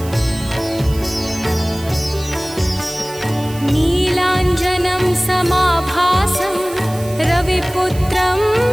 नीलाञ्जनं समाभासं रविपुत्रं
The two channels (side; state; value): right; noise; hiss, 17 dB below the sound